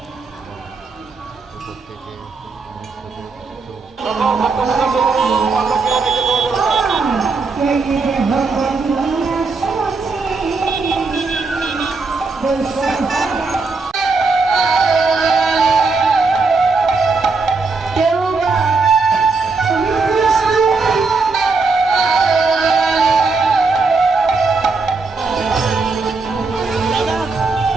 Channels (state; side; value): quieter; left; 4.1 dB